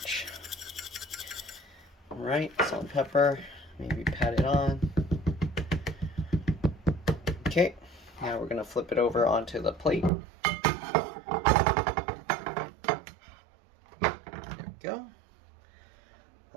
Alright, salt and pepper, maybe pat it on. Okay, now we're going to flip it over onto the plate. There we go.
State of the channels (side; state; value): left; drops out; at 10.1 s